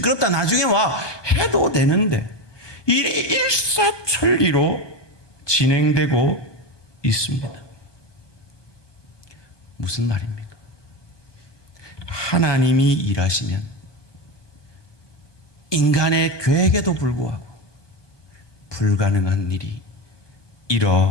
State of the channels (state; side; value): late; right; 1.2 ms